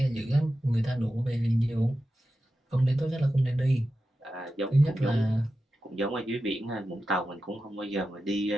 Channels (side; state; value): both; normal; correlation 0.92